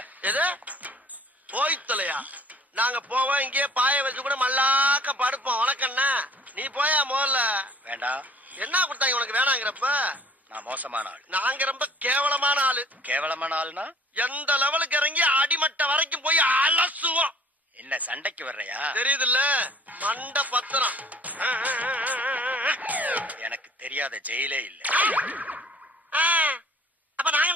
எது போய் தொலையா? நாங்க போவோம், இங்கே பாய வச்சு கூட மல்லாக்க படுப்போம். உனக்கண்ணா நீ போயா முதல்ல. வேண்டாம். என்ன கொடுத்தாங்க உனக்கு வேணாங்கிறப்ப? நான் மோசமான ஆள். நாங்க ரொம்ப கேவலமான ஆளு. கேவலமான ஆளுனா எந்த லெவலுக்கு இறங்கி அடிமட்ட வரைக்கும் போய் அலசுவோம். என்ன சண்டைக்கு வர்றையா? தெரியுதுல்ல, மண்ட பத்திரம். எனக்கு தெரியாத ஜெயிலே இல்ல. அப்ப நாங்க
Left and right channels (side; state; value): both; normal; correlation 0.52